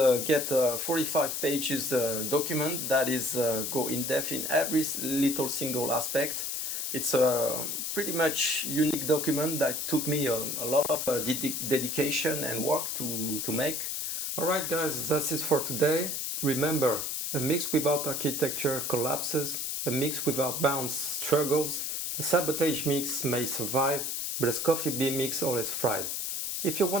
get a 45 pages document that is go in depth in every little single aspect. It's a pretty much unique document that took me a lot of dedication and work to make. Alright guys, that's it for today. Remember, a mix without architecture collapses, a mix without bounds struggles, a sabotage mix may survive, but a SKOFI B mix always thrives. If you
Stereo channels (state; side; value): noise; left; hiss, 2 dB below the sound